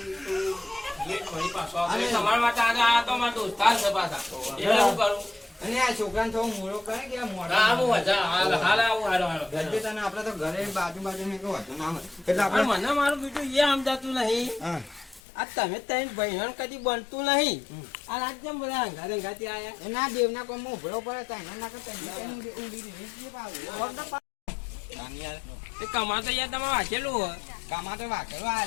ફરી પાછો અરે. તમારા માટે આજે આ તો મારા દોસ્તાર છે પાછા એટલે હું કરું અને આ છોકરાને થોડો મોડો કરે કે આ મોડો હા હું વધારે હાલ આવું હાલો ગજે તને આપણે તો ઘરે બાજુ ને કહો હતો ના હોય. એટલે પણ આપણે મને મારું બીજું એ સમજાતું નહીં હા આ તમે ત્રણ ભાઈઓ કદી બનતું નહીં આ રાત જેમ બધા અંગાથી આયા એના દેવના કોઈ મોભળો પડે તો એના ના કરતા ઊંડી દીધી યાર એ કમાતો યાર તમે વાંચેલું હોય કામા તો વાકેલો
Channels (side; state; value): right; drops out; at 15.2 s